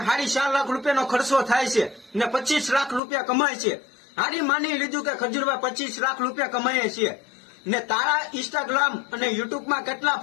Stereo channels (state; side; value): drops out; right; at 3.0 s